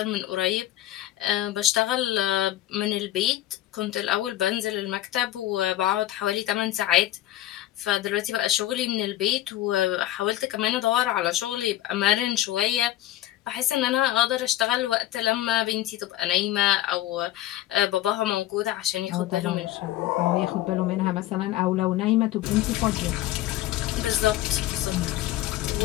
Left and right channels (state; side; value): quieter; right; 14.1 dB